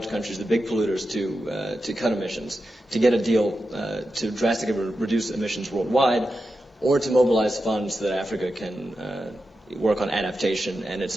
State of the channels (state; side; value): normal; both; correlation 0.90